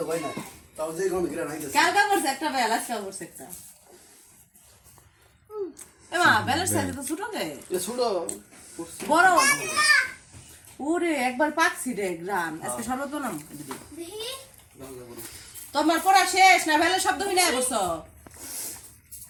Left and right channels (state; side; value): identical; both; correlation 1.00